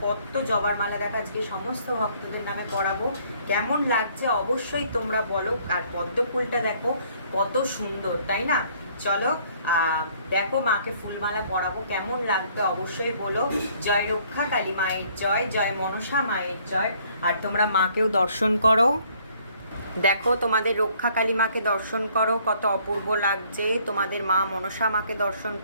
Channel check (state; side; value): inverted; both; correlation -0.62